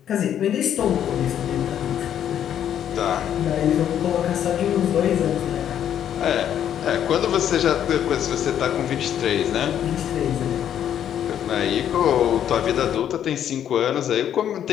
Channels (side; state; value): right; quieter; 9.9 dB